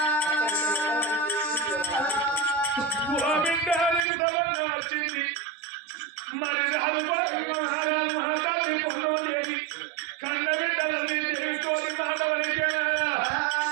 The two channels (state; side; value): drops out; left; at 4.0 s